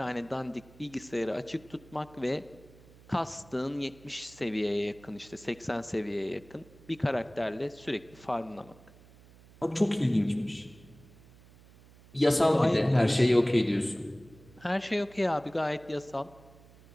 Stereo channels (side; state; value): right; noise; hum, 24 dB below the sound